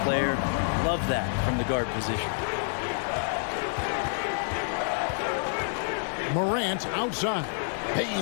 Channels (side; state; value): right; silent; digital silence